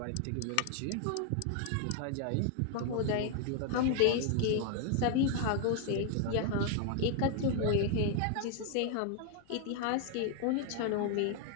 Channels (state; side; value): different; both; correlation 0.00